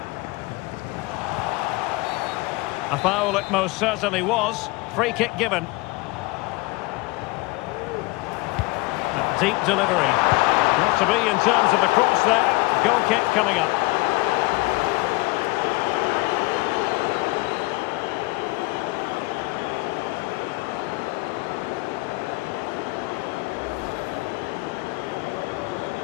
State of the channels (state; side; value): quieter; right; 23.1 dB